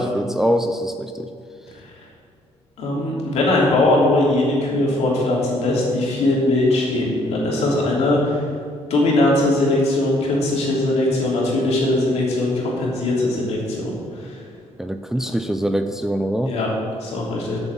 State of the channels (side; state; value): both; normal; correlation 0.66